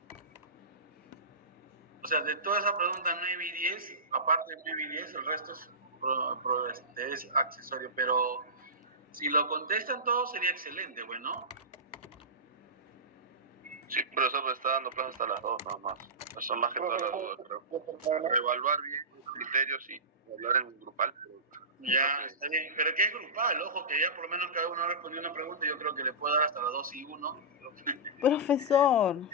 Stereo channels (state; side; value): normal; both; correlation -0.19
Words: O sea, de todas esas preguntas 9 y 10, aparte de 9 y 10, el resto es accesorio. Pero si lo contestan todos sería excelente, bueno. Sí, profesor, pues está dando plazo hasta las 2 nada más. Eso más que todas las dudas, creo. Evaluar bien los criterios y hablar en grupal. Ya, está bien. Pero que es grupal, ojo, que ya por lo menos cada uno ha respondido una pregunta. Yo creo que le puedo dar hasta las 2 y 1. Profesor.